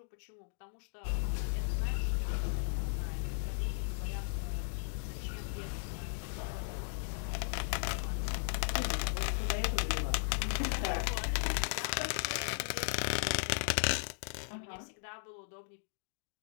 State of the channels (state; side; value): silent; right; digital silence